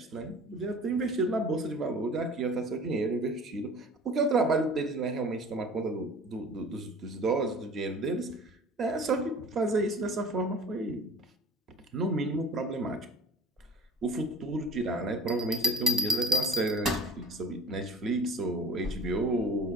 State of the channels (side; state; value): both; normal; correlation 0.42